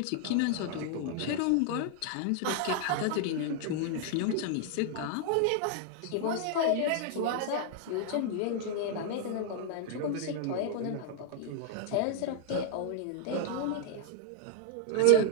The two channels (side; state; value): both; different; correlation 0.00